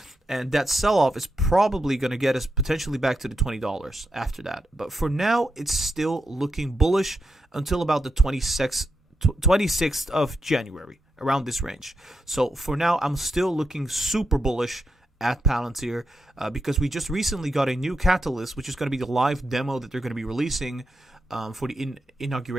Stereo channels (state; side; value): normal; both; correlation 0.85